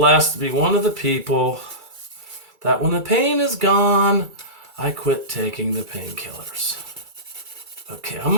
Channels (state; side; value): late; left; 2.3 ms